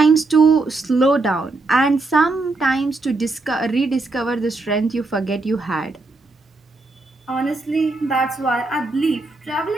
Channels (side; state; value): left; quieter; 3.3 dB